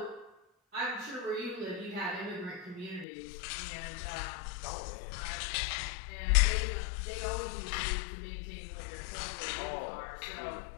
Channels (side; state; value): right; drops out; at 3.1 s